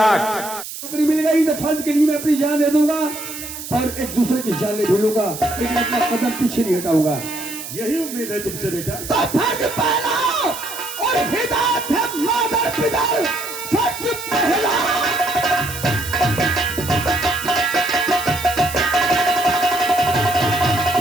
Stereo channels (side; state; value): right; noise; hiss, 10 dB below the sound